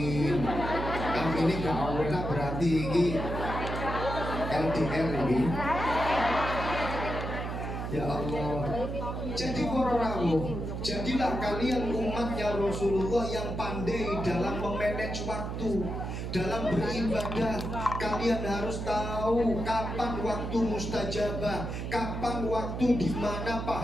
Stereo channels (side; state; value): right; noise; hum, 5 dB below the sound